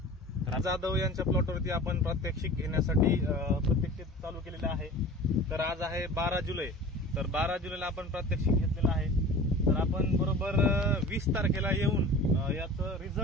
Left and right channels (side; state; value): both; normal; correlation 0.39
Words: तर जाधव यांच्या प्लॉटवरती आपण प्रात्यक्षिक घेण्यासाठी प्रत्यक्षिक चालू केलेले आहे। तर आज आहे 12 जुलै। तर 12 जुलैला आपण प्रात्यक्षिक घेतलेलं आहे। तर आपण बरोबर 20 तारखेला येऊन याचं